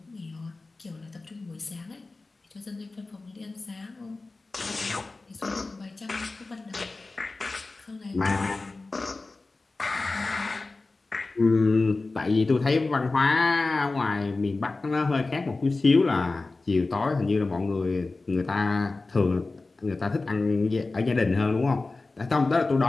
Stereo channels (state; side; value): quieter; right; 3.5 dB